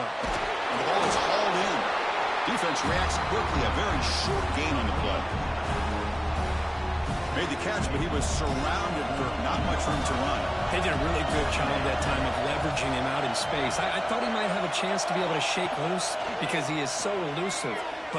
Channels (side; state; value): both; identical; correlation 1.00